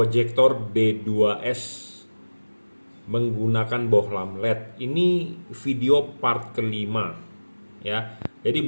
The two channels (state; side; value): inverted; both; correlation -1.00